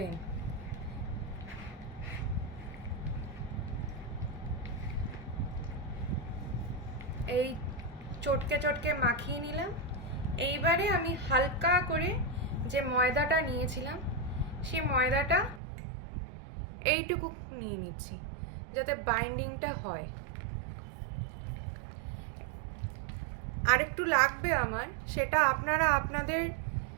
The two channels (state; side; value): drops out; left; at 15.6 s